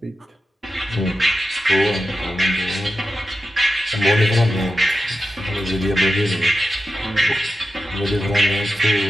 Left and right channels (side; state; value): both; normal; correlation 0.91